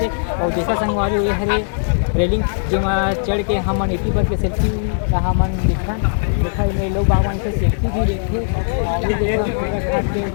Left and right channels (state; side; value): silent; right; 58 dB below the other